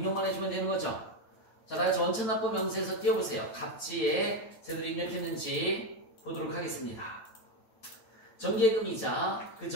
해주면 되는 거죠. 자, 다같이 원천납부 명세서 띄워보세요. 갑지에 제대로 입력했는지 보도록 하겠습니다. 정기예금이자,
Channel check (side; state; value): right; late; 9.0 ms